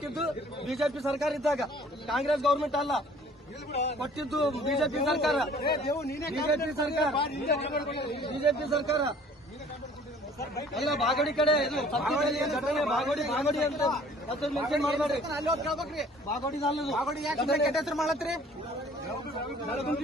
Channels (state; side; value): normal; both; correlation 0.53